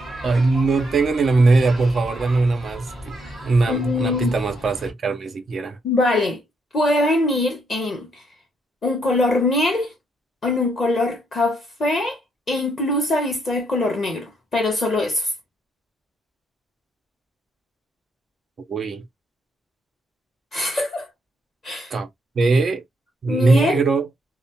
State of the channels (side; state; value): both; normal; correlation 0.76